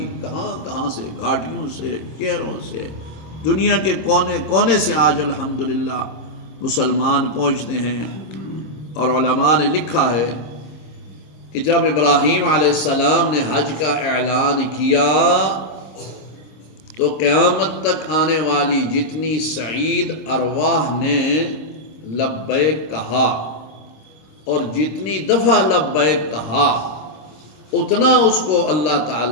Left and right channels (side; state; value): right; late; 26 ms